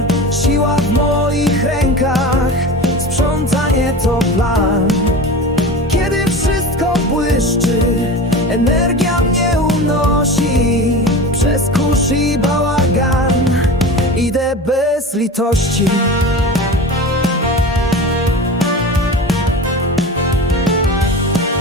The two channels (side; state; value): both; normal; correlation 0.31